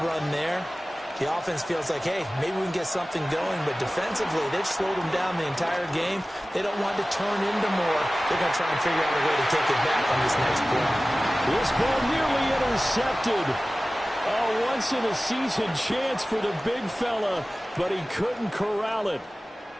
run there, the offense feels like, hey, maybe we can get something going, but defensively, they've slowed them down the entire game. They don't want to turn into more. They're going to try and figure out a way to take it back on this next play. This ball nearly intercepted. A once-in-a-season chance for the big fella, but he couldn't corral it.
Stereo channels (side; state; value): both; normal; correlation 0.97